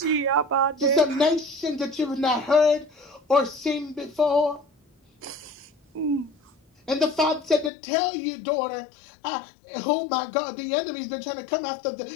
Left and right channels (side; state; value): right; drops out; at 7.7 s